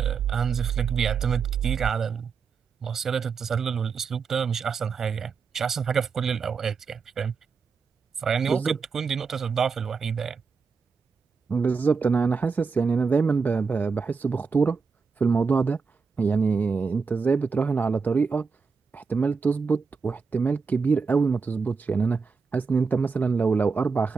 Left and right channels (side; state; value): left; quieter; 5.2 dB